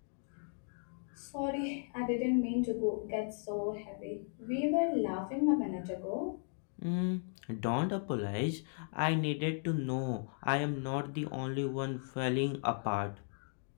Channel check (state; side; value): silent; right; 54 dB below the other